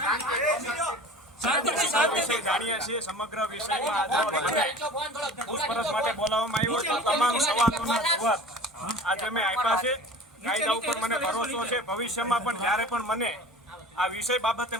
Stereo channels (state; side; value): normal; both; correlation 0.40